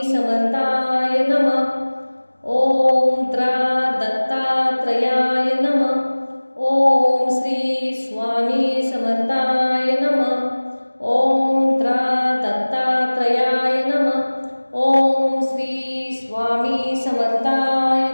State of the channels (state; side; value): inverted; both; correlation -1.00